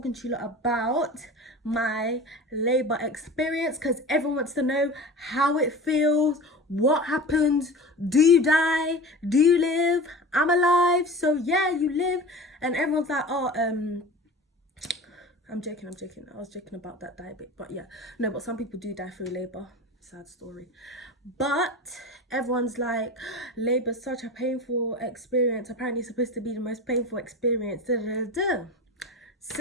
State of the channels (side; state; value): both; normal; correlation 0.34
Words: to you lot about my labor experience, because everyone wants to know how it feels, what happens, do you die, do you live? I'm alive, so yeah, you live. And everyone's like, I'm joking. I was joking about that die bit, but yeah, no, but some people do die through labor. Sad story. But everyone's like, labor's such a painful experience. Apparently it's supposed to be the most painful experience. Da, da, da, da.